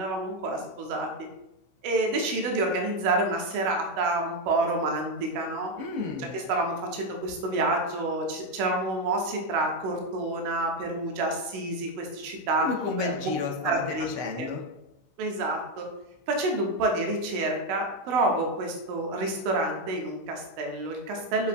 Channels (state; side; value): late; left; 16 ms